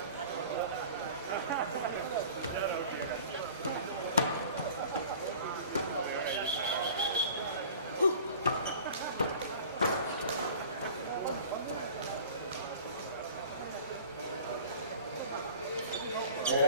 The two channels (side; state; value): both; inverted; correlation -0.44